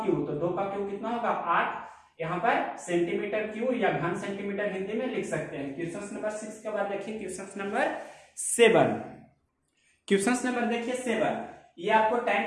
क्यूब। तो 2 का क्यूब कितना होगा, 8। यहाँ पर सेंटीमीटर क्यूब या घन सेंटीमीटर हिंदी में लिख सकते हैं। क्वेश्चन नंबर 6 के बाद देखिए क्वेश्चन नंबर 7। क्वेश्चन नंबर देखिए 7, ये आपको tan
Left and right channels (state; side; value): identical; both; correlation 1.00